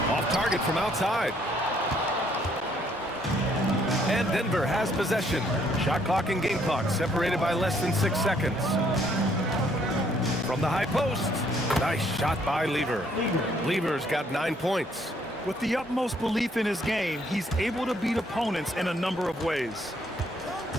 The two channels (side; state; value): both; normal; correlation 0.67